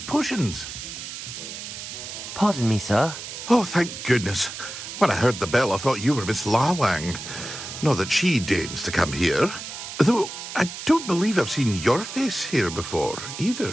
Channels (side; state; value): right; noise; hiss, 9 dB below the sound